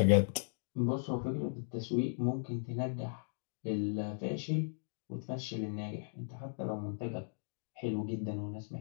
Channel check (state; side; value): silent; right; digital silence